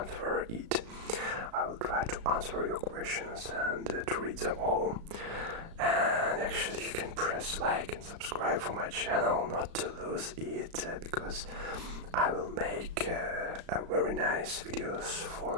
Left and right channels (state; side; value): late; left; 35 ms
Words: it. I will try to answer your questions and to read them all. And actually you can press like and subscribe for my channel not to lose it, because I will make a very nice videos